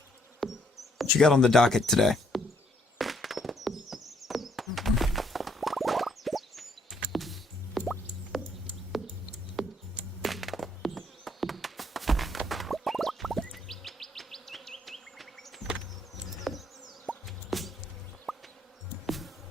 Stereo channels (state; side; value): normal; both; correlation 0.68